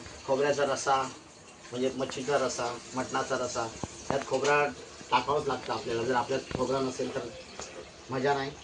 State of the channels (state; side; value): identical; both; correlation 1.00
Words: खोबऱ्याचा रसा म्हणजे मच्छीचा रसा, मटणाचा रसा, त्यात खोबरा टाकावंच लागतं आपल्याला. जर आपल्यात खोबरा नसेल तर मजा नाही.